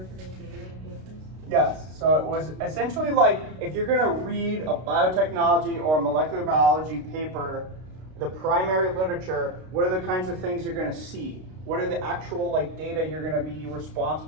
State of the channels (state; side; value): late; left; 32 ms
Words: data in papers? Yes, so it was essentially like if you're going to read a biotechnology or molecular biology paper, the primary literature, what are the kinds of things you're going to see? What are the actual like data you're going to be